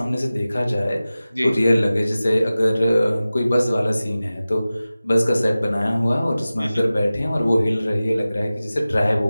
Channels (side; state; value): both; inverted; correlation -0.96